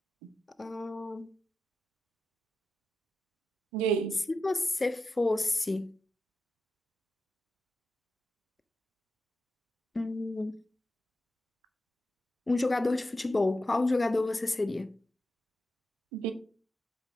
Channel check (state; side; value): normal; both; correlation 0.89